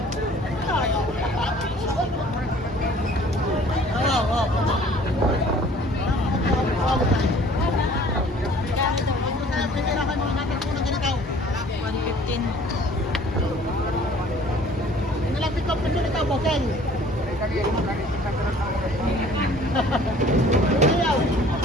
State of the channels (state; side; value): normal; both; correlation 0.52